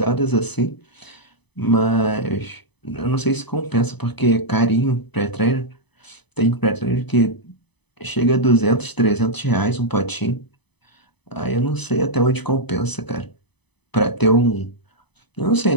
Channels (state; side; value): late; right; 0.99 ms